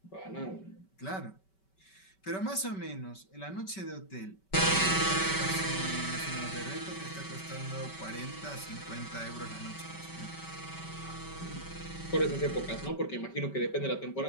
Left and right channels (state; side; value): late; right; 5.2 ms